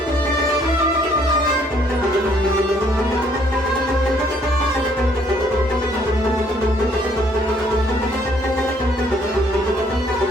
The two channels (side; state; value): both; normal; correlation 0.64